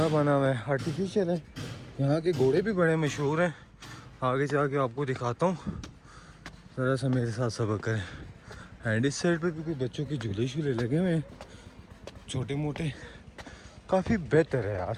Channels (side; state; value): both; identical; correlation 1.00